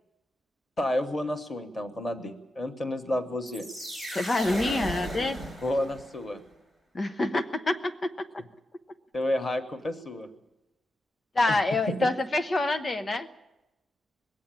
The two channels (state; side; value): normal; both; correlation 0.89